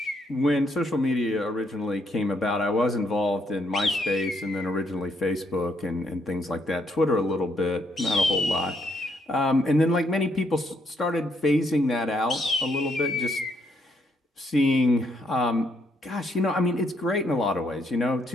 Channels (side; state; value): both; normal; correlation 0.73